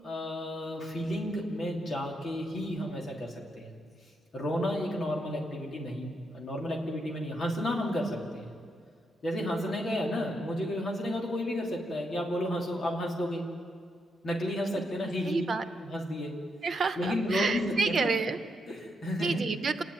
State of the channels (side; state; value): both; normal; correlation 0.80